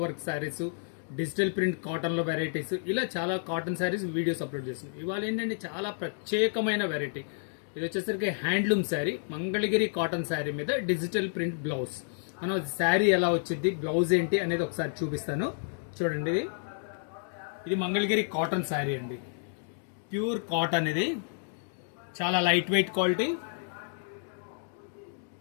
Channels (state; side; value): silent; right; digital silence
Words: work saris, digital print కాటన్లో వెరైటీస్, ఇలా చాలా కాటన్ శారీస్ వీడియోస్ అప్లోడ్ చేస్తున్నాం. ఇవాళ ఏంటంటే చాలా ప్రత్యేకమైన వెరైటీ. ఇది వచ్చేసరికి హ్యాండ్లూమ్ శారీ, మంగళగిరి కాటన్ శారీ మీద డిజిటల్ ప్రింట్ బ్లౌజ్. మనం శారీ ఎలా వచ్చింది, బ్లౌజ్ ఏంటి అనేది ఒకసారి చూపిస్తాను. చూడండి, ఇది మంగళగిరి కాటన్ శారీ అండి. ప్యూర్ కాటన్, ఇది చాలా లైట్ వెయిట్ క్వాలిటీ.